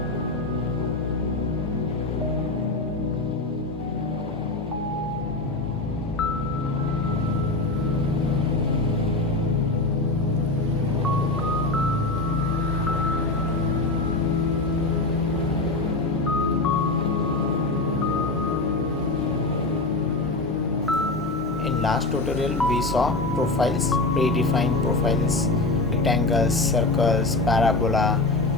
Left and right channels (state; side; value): quieter; right; 3.0 dB